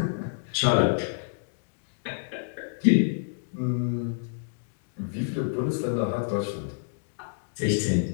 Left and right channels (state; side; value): silent; right; digital silence